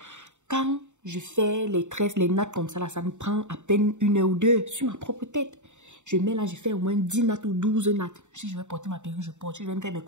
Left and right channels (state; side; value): late; left; 0.84 ms